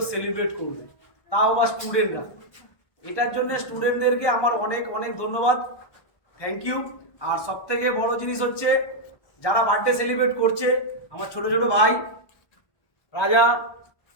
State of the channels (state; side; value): late; right; 1.4 ms